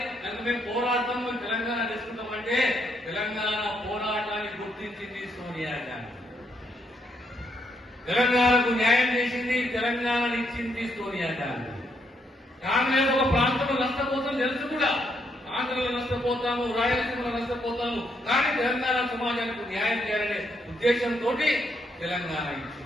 కనుక మేము పోరాడతాం, మేము తెలంగాణ తీసుకుంటామంటే తెలంగాణ పోరాటాన్ని గుర్తించింది సోనియా గాంధీ. తెలంగాణకు న్యాయం చేసింది, తెలంగాణను ఇచ్చింది సోనియా గాంధీ. కాంగ్రెస్ ఒక ప్రాంతంలో నష్టపోతాం తెలుసు కూడా, ఆంధ్రలో నష్టపోతాము, రాయలసీమలో నష్టపోతాము, కానీ తెలంగాణ సమాజానికి న్యాయం చేయాలనే ఉద్దేశంతో తెలంగాణ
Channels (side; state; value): both; normal; correlation 0.75